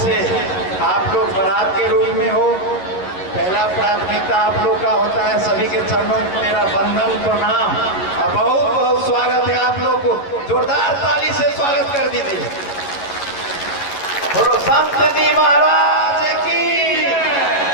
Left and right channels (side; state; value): right; late; 11 ms